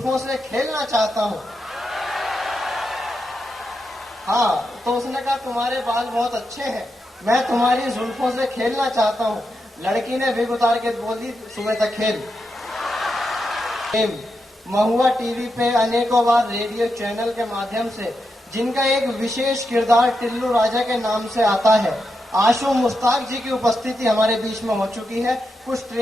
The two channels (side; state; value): both; normal; correlation 0.86